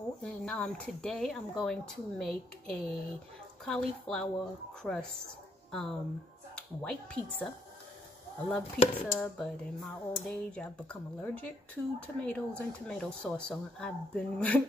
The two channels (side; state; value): both; normal; correlation 0.72